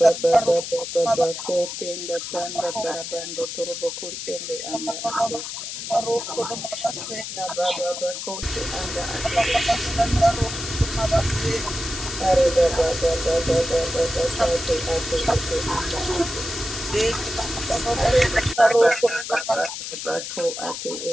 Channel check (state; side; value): noise; left; hiss, 7 dB below the sound